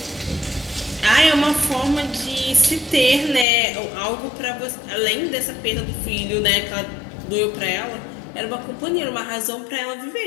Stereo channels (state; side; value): drops out; right; at 3.5 s